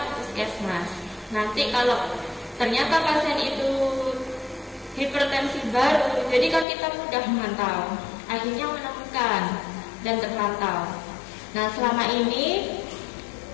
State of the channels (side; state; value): right; drops out; at 6.7 s